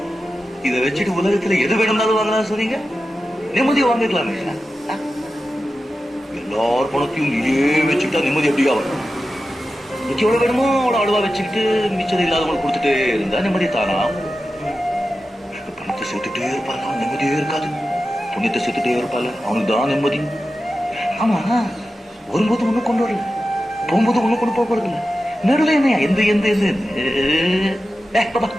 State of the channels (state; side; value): normal; both; correlation 0.92